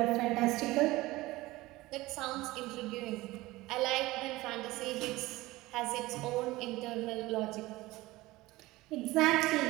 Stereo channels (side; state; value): left; quieter; 19.2 dB